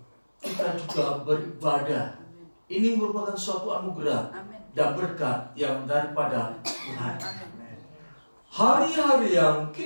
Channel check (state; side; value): inverted; both; correlation -1.00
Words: kita juga beribadah, ini merupakan suatu anugerah dan berkat yang daripada Tuhan. Hari-hari yang